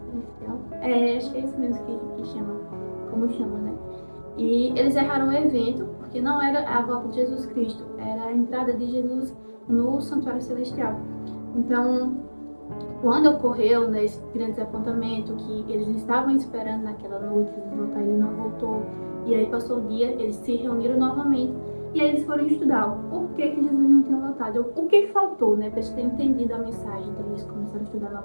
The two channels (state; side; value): inverted; both; correlation -1.00